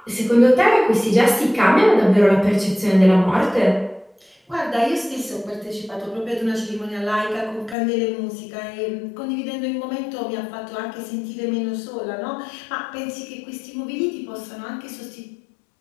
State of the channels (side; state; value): right; drops out; at 7.8 s